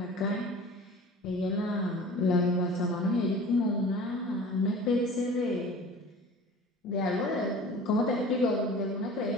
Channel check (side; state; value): both; normal; correlation 0.42